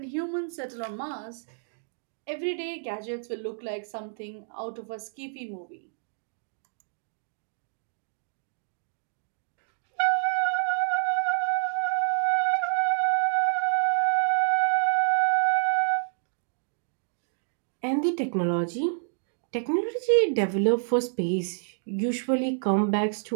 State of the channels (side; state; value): left; silent; digital silence